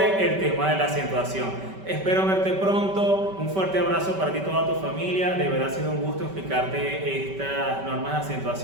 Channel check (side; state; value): left; late; 5.2 ms